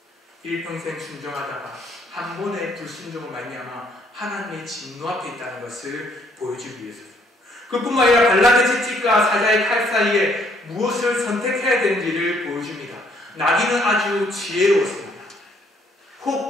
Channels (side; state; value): both; normal; correlation 0.67